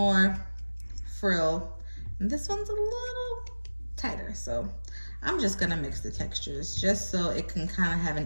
frill, and this one's a little tighter. So I'm just gonna mix the textures just so it can kind of have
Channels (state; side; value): inverted; both; correlation -1.00